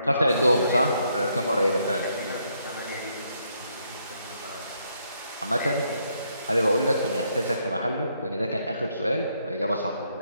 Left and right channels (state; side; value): inverted; both; correlation -0.73